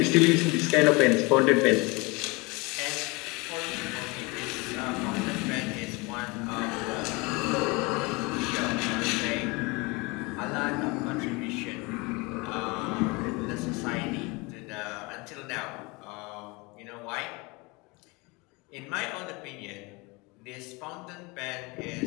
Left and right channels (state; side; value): quieter; right; 26.3 dB